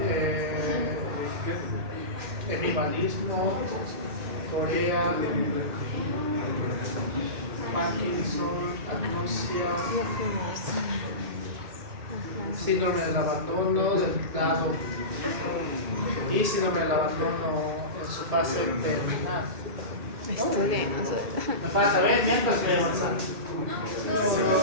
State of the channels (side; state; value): left; late; 1.8 ms